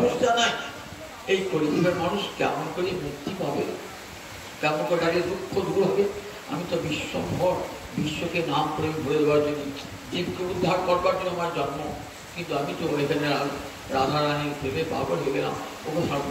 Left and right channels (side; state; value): both; identical; correlation 1.00